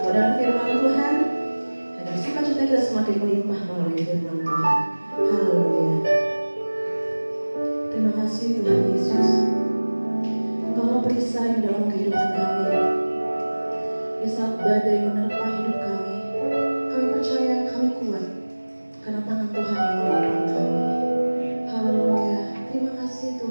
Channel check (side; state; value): both; inverted; correlation -1.00